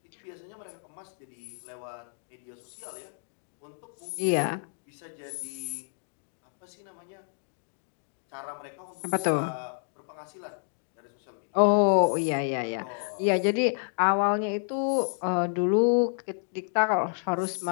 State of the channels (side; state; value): right; silent; 58 dB below the other